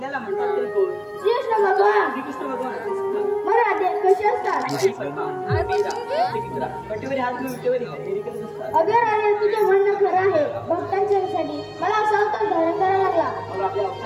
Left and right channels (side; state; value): both; identical; correlation 1.00